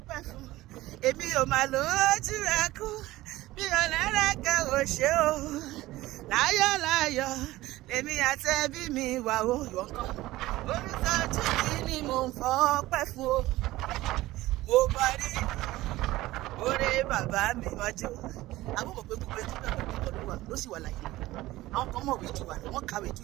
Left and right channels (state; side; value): quieter; left; 17.3 dB